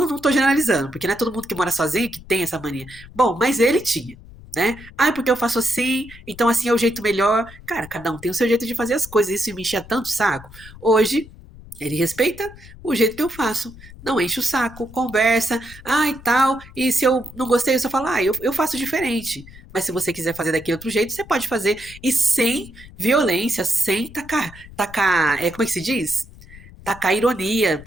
tô generalizando, porque não é todo mundo que mora sozinho que tem essa mania. Bom, mas ele tinha. Né? Ah, porque eu faço assim, então assim é o jeito melhor. Cara, cada um tem o seu jeito de fazer as coisas, isso me enchia tanto o saco. Hoje, ele respeita o jeito que eu faço, não enche o saco, conversa, ah e tal, e se eu não gostei, eu só falo, eu faço diferente. Mas se você quiser fazer daquele outro jeito, você pode fazer, e sem violência, sem tacar, como é que se diz? Tacar ironia,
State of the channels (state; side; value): noise; left; rumble, 19 dB below the sound